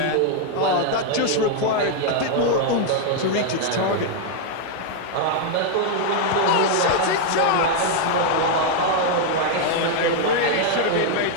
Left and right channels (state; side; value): different; both; correlation 0.00